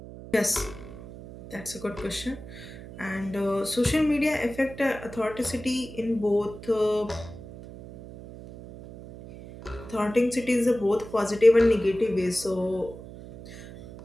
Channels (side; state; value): right; noise; hum, 15 dB below the sound